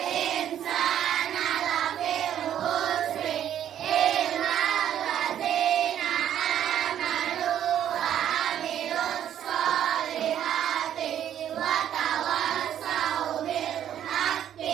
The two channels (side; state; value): left; quieter; 10.5 dB